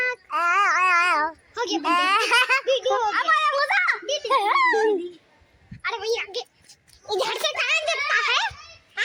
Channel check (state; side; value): identical; both; correlation 1.00